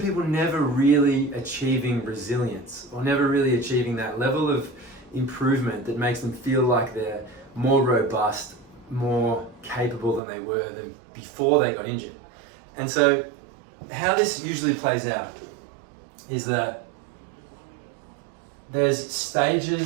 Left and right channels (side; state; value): left; drops out; at 10.2 s